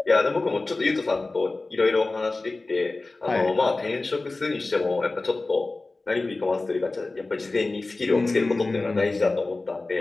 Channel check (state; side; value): quieter; right; 3.3 dB